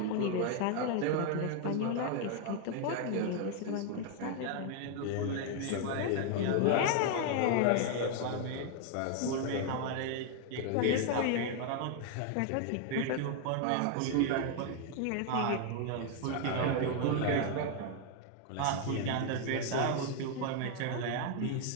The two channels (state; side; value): different; both; correlation 0.00